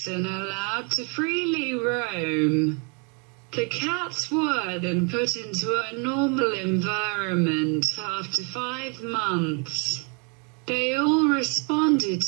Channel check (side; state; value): left; quieter; 35.1 dB